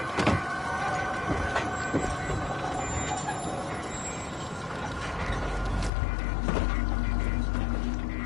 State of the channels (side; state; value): right; drops out; at 5.9 s